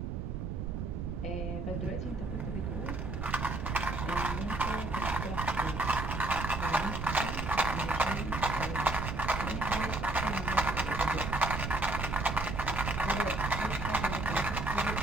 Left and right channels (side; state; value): right; noise; rumble, 3 dB below the sound